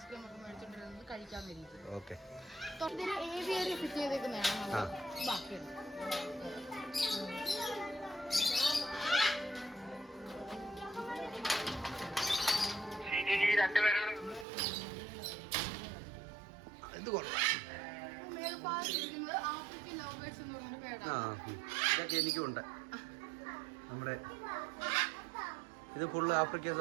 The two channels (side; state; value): left; drops out; at 14.5 s